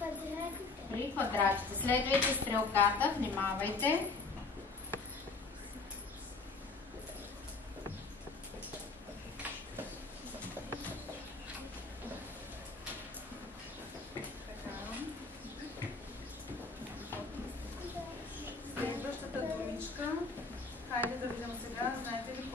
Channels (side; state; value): right; quieter; 3.9 dB